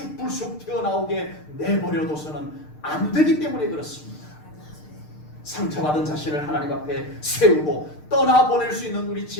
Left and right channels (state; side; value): late; right; 6.6 ms